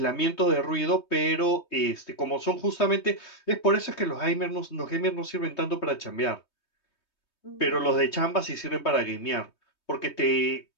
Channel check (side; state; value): right; late; 3.2 ms